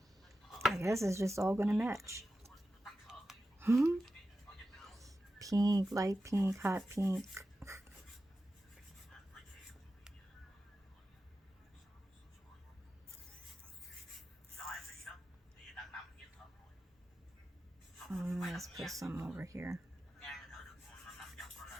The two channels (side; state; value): both; normal; correlation 0.92